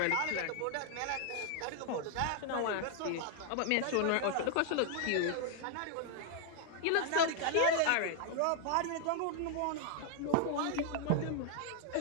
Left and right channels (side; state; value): both; different; correlation 0.00